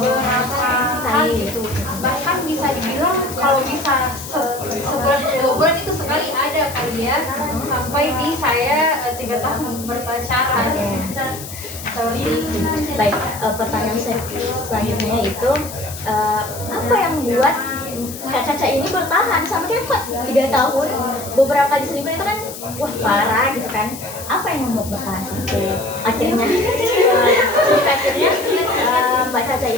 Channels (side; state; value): left; noise; hiss, 12 dB below the sound